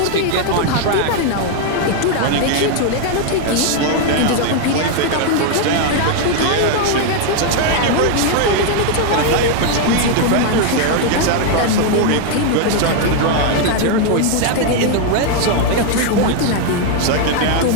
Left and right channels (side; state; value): both; different; correlation 0.00